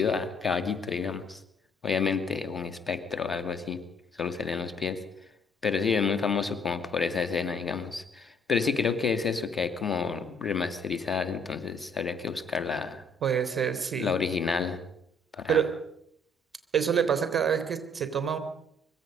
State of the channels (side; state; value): both; normal; correlation 0.63